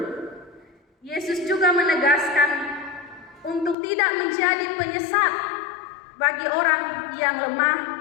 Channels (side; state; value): right; drops out; at 3.8 s